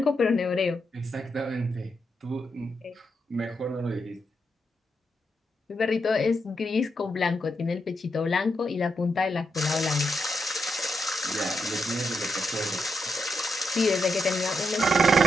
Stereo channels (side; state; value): both; normal; correlation 0.82